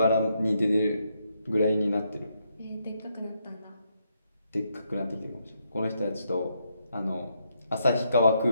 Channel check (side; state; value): both; inverted; correlation -0.78